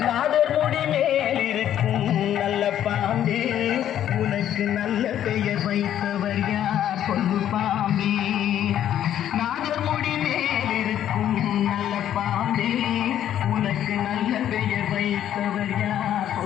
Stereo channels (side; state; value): right; quieter; 10.9 dB